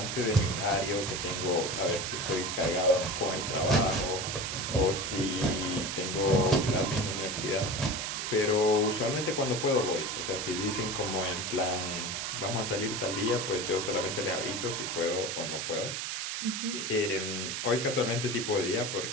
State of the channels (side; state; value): right; noise; hiss, 3 dB below the sound